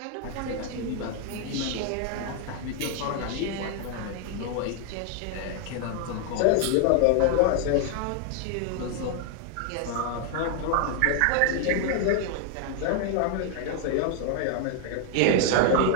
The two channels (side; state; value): both; different; correlation 0.00